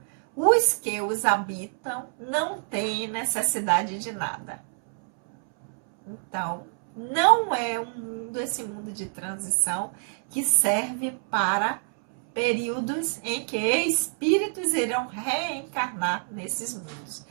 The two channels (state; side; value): silent; left; 61 dB below the other